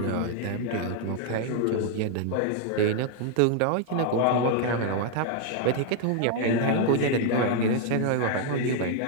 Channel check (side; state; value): both; different; correlation 0.00